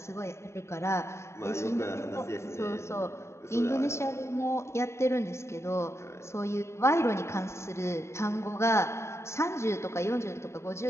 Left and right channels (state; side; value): late; right; 0.13 ms